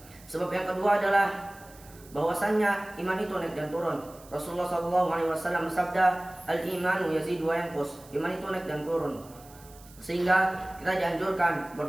Sebab yang kedua adalah bahwasannya iman itu naik dan turun. Rasulullah sallallahu alaihi wasallam bersabda, "Al-imanu yazidu wa yanqus." Iman itu naik dan turun. Sehingga kita dianjurkan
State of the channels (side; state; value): right; noise; hiss, 23 dB below the sound